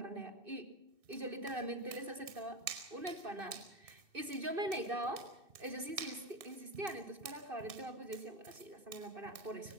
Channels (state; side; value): late; left; 2.6 ms